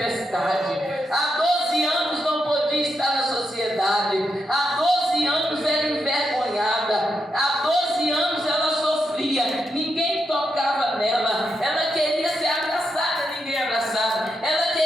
há 12 anos não podia estar na sociedade, há 12 anos era envergonhada, há 12 anos ela sofria, ninguém panela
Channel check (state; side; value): normal; both; correlation 0.83